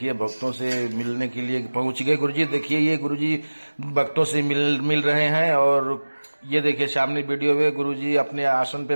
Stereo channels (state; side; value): inverted; both; correlation -1.00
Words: भक्तों से मिलने के लिए पहुंच गए गुरुजी। देखिए ये गुरुजी भक्तों से मिल रहे हैं और ये देखिए सामने वीडियो में गुरुजी अपने आसन